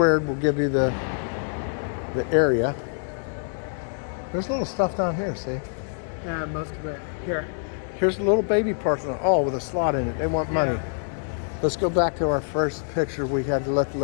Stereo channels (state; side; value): silent; right; digital silence